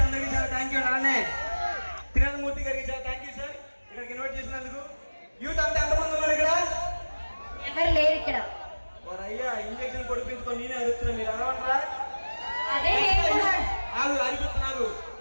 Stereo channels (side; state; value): both; inverted; correlation -1.00